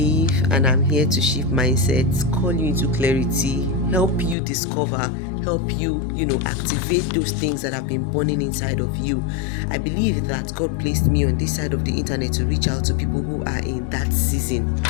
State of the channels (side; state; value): right; drops out; at 4.4 s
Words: and I'm here to shift mindsets, call you into clarity, help you discover, help you, activate those things that have been burning inside of you. I believe that God placed me on this side of the internet to reach out to people who are in that season.